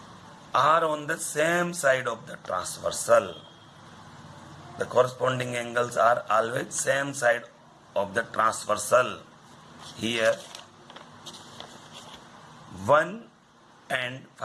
are on the same side of the transversal. The corresponding angles are always same side of the transversal. Here 1 and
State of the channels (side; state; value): both; identical; correlation 1.00